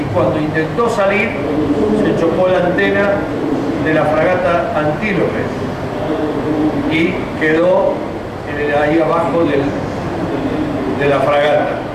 cuando intentó salir, se chocó la antena de la fragata Antílope y quedó ahí abajo de la fragata,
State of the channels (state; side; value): identical; both; correlation 1.00